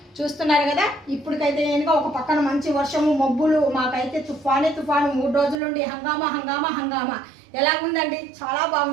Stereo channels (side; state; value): left; drops out; at 5.6 s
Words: చూస్తున్నారు కదా. ఇప్పటికైతే ఇంకా ఒక పక్కన మంచి వర్షము మబ్బులు, మాకైతే తుఫాను 3 రోజుల నుండి హంగామా ఎలాగుందండి. చాలా